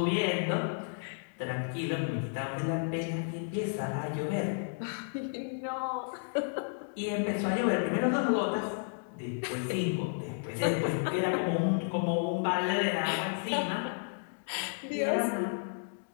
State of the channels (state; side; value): silent; right; digital silence